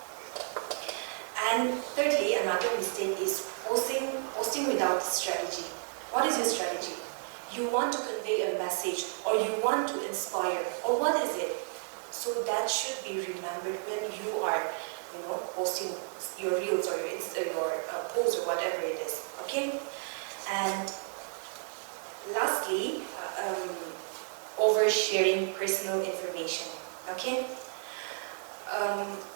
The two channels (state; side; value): silent; left; 56 dB below the other